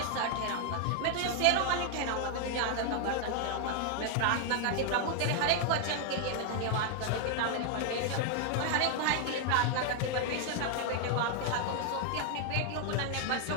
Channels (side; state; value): both; different; correlation 0.00